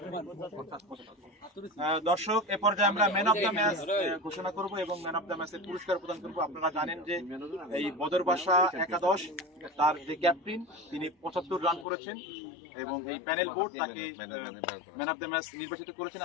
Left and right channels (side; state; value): right; drops out; at 11.9 s